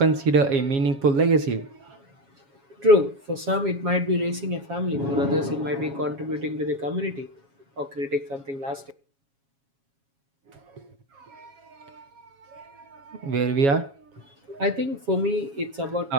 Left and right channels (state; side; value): late; left; 7.3 ms